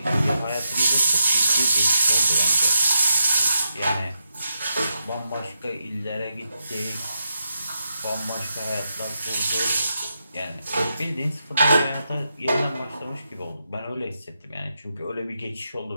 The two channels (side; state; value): both; inverted; correlation -0.84